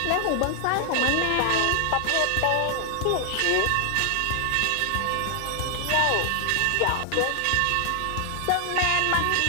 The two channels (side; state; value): both; different; correlation 0.00